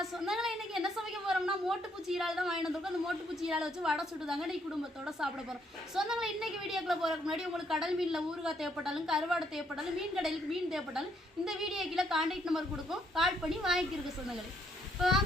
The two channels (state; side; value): normal; both; correlation 0.71